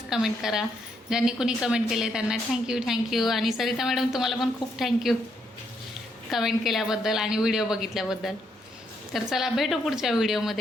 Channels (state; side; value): normal; both; correlation 0.75